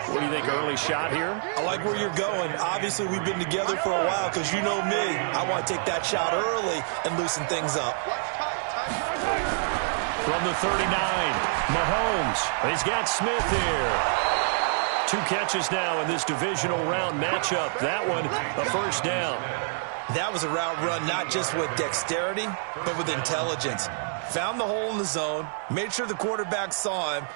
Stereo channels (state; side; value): silent; left; digital silence